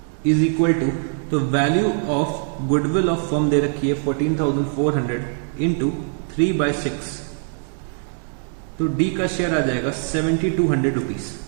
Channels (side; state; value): left; silent; 59 dB below the other